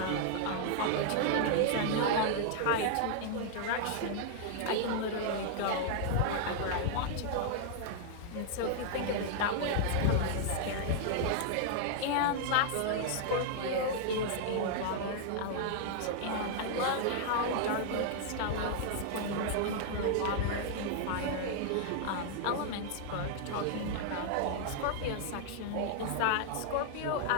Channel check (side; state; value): both; different; correlation 0.00